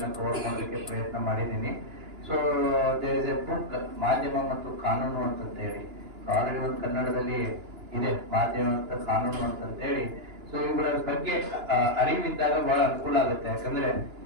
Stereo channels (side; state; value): left; late; 2.9 ms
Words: ಕವರ್ ಮಾಡೋದಕ್ಕೆ ಪ್ರಯತ್ನ ಮಾಡಿದ್ದೀನಿ. So there is a book, ಮಾಧ್ಯಮ ಮತ್ತು ಕಾನೂನು ಅಂತೇಳಿ. ಆಲ್ರೆಡಿ ಒಂದು ಕನ್ನಡದಲ್ಲಿ ಇದೆ, ಮಾಧ್ಯಮ ಮತ್ತು ಕಾನೂನು ಅಂತೇಳಿ. ಸೊ ಇವುಗಳ ಬಗ್ಗೆ ಅರಿವಿದ್ದಾಗ ಬಹಳ ಅನುಕೂಲ ಆಗುತ್ತೆ. ಯಾಕಂದ್ರೆ